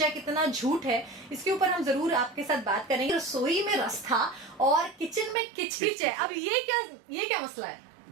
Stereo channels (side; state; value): left; drops out; at 5.4 s